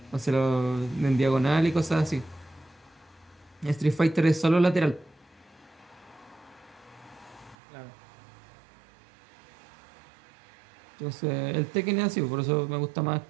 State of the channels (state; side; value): drops out; left; at 7.6 s